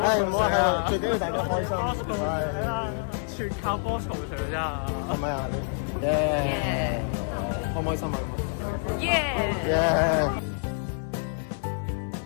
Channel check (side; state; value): right; silent; 57 dB below the other